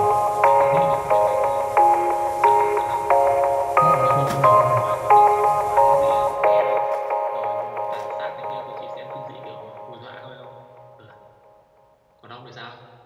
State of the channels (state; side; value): identical; both; correlation 1.00